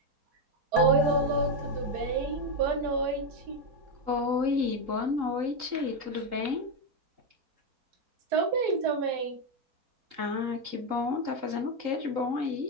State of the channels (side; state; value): left; late; 3.8 ms